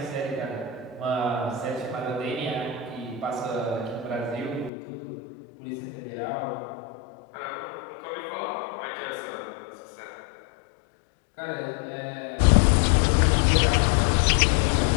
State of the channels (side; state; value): right; drops out; at 4.7 s